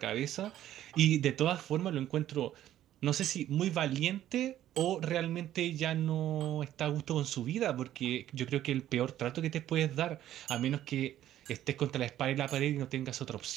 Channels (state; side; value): quieter; left; 12.4 dB